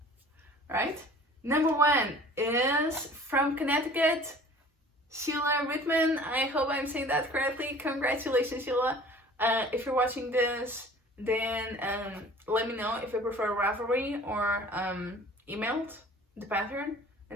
Right? Number 1 is from Connecticut, Sheila Rittman. I hope I'm saying that correctly. Congratulations, Sheila. If you're watching this, then let me know if you prefer Ravelry or emailed the pattern,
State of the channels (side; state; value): both; normal; correlation 0.47